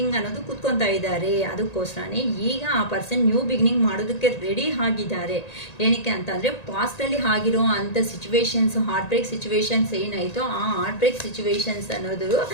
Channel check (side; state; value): right; late; 1.9 ms